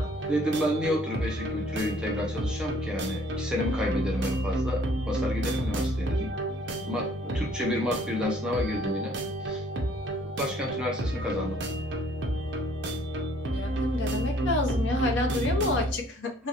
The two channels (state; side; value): normal; both; correlation 0.59